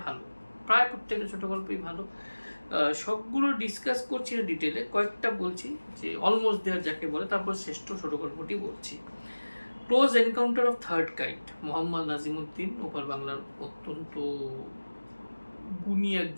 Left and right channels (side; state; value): both; inverted; correlation -1.00